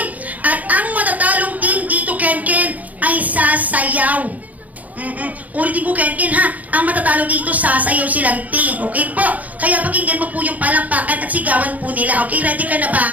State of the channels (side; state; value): left; late; 0.076 ms